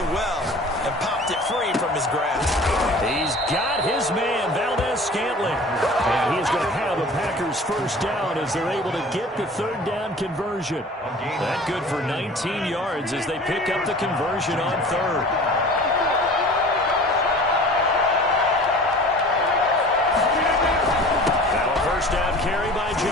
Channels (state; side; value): normal; both; correlation 0.43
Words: well and popped it free from his grasp. He's got his man, Valdez-Scantling. And he's going to have the Packers' first down as they're able to get the 3rd down conversion. That good for 19 yards as they pick up the conversion on 3rd. carry by